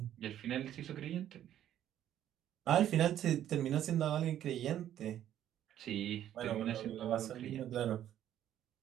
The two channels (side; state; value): left; quieter; 11.3 dB